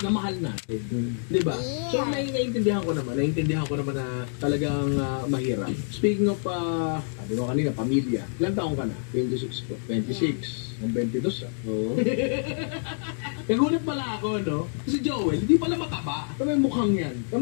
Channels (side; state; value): right; silent; digital silence